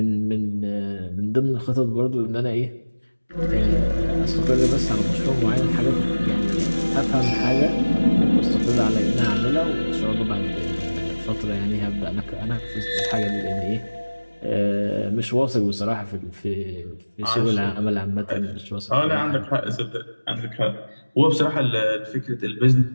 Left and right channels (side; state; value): both; inverted; correlation -1.00